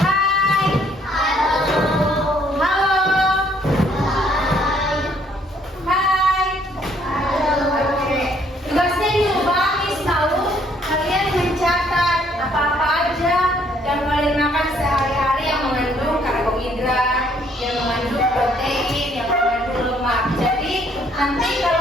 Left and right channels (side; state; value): both; normal; correlation 0.65